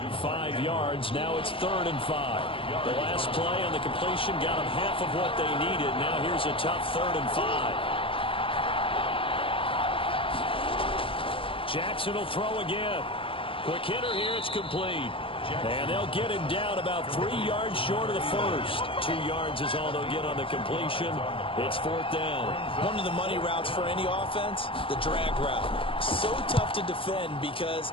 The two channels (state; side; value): late; right; 0.26 ms